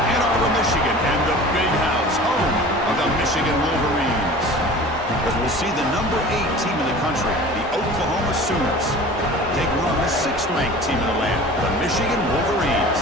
Arbor, Michigan, and the Big House, home of the Michigan Wolverines. As we'll see the number 8 team in the country, the Oklahoma Sooners, taking on the 6th-ranked team in the land, the Michigan Wolverines.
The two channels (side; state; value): both; normal; correlation 0.41